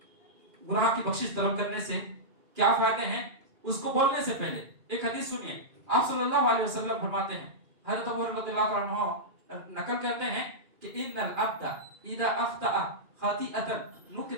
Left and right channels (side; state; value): left; late; 2.9 ms